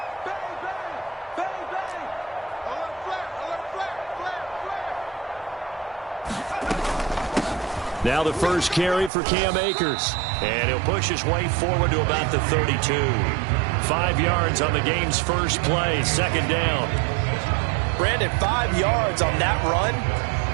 Now the first carry for Cam Akers. And he'll push his way forward to about the 32. 5 yards on the game's first play, second down. Brandon, 5 yards on that run.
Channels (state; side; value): drops out; left; at 9.1 s